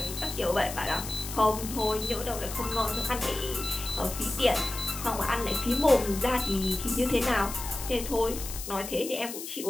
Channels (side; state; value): left; noise; hiss, 9 dB below the sound